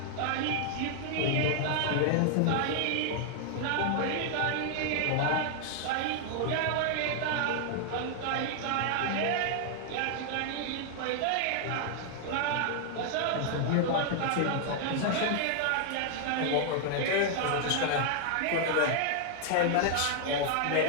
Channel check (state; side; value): different; both; correlation 0.00